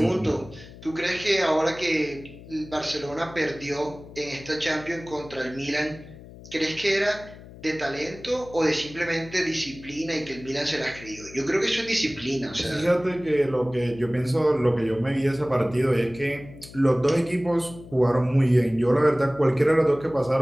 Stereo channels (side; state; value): left; noise; hum, 18 dB below the sound